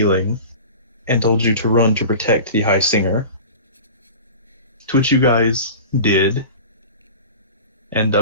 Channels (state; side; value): inverted; both; correlation -0.36